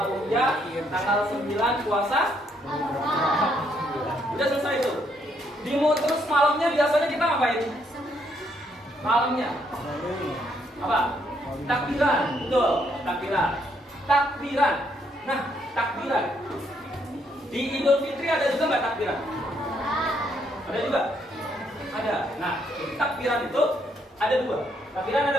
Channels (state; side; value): normal; both; correlation 0.72